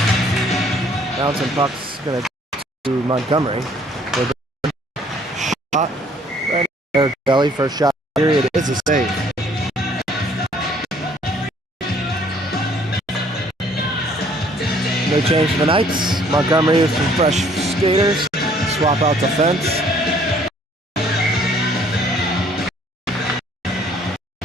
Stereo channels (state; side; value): normal; both; correlation 0.60